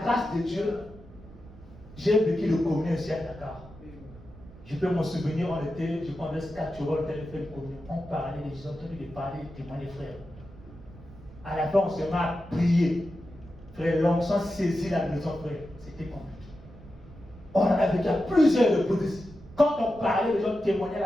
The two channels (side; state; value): right; noise; rumble, 19 dB below the sound